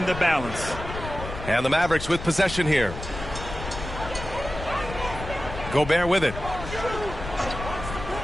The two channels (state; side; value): noise; left; rumble, 9 dB below the sound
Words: the balance. And the Mavericks with possession here. Gobert with it.